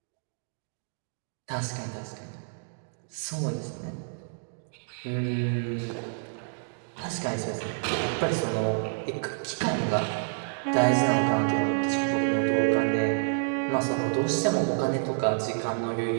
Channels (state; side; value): silent; left; digital silence